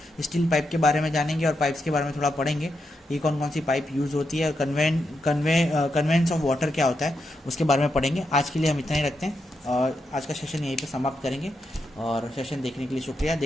स्टील पाइप के बारे में जानेंगे और पाइप्स के बारे में थोड़ा पढ़ेंगे, ये कौन कौन सी पाइप यूज़ होती है, कन्वेंस ऑफ वाटर क्या होता है उसके बारे में पढ़ेंगे। आज के लिए हम इतना ही रखते हैं और आज का सेशन यहीं पे समाप्त करेंगे। और सेशन देखने के लिए शुक्रिया।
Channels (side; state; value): both; normal; correlation 0.84